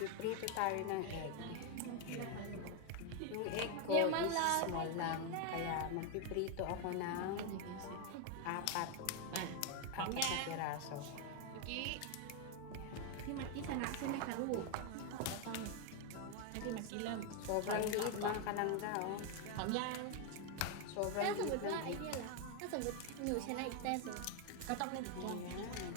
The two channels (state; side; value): different; both; correlation 0.01